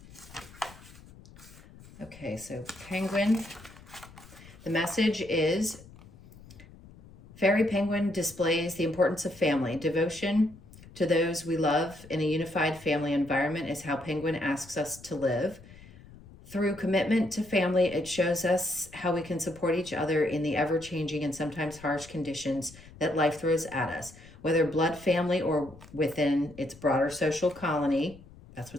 Okay, so penguin. The message is, Fairy Penguin displays the importance of family. Devotion to those we love in a unified family environment is how Penguin asks us to live. Through commitment to family, it shows us how we can support each other in the ever-changing and sometimes harsh conditions that life throws at us. Whether blood family or within its broader social colony, that's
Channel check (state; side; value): noise; left; rumble, 21 dB below the sound